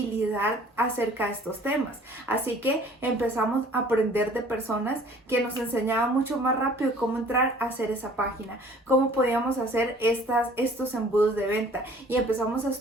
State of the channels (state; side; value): normal; both; correlation 0.52